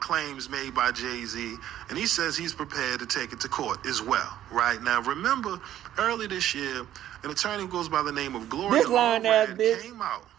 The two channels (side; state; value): left; quieter; 12.1 dB